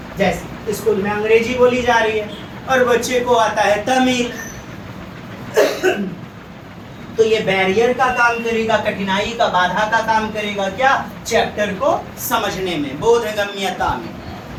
जैसे स्कूल में अंग्रेजी बोली जा रही है और बच्चे को आता है तमिल, तो ये बैरियर का काम करेगा, कठिनाई का, बाधा का काम करेगा, क्या चैप्टर को समझने में, बोधगम्यता में,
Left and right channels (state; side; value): identical; both; correlation 1.00